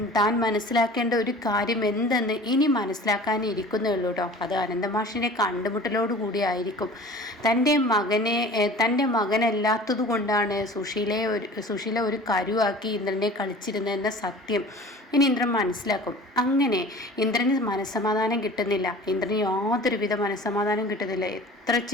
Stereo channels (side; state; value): both; normal; correlation 0.43